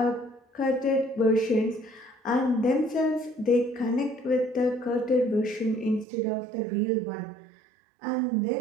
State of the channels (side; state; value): left; drops out; at 6.1 s